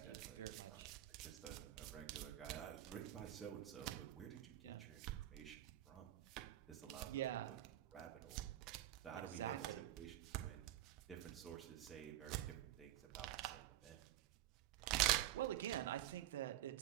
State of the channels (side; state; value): left; quieter; 13.7 dB